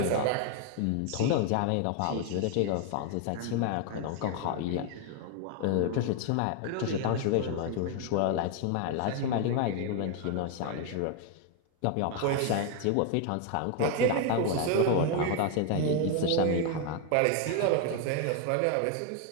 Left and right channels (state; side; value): different; both; correlation 0.00